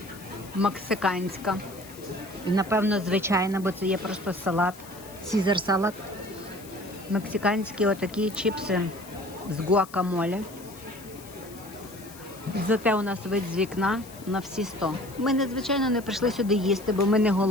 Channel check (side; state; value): left; noise; hiss, 19 dB below the sound